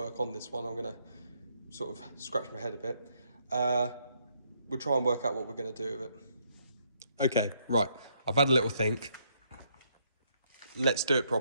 on this one. I'm going to sort of scratch my head a bit. We'll try and work out what we're going to do with it. Okay, right. I've had a little think. Let's do it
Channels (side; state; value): both; inverted; correlation -0.72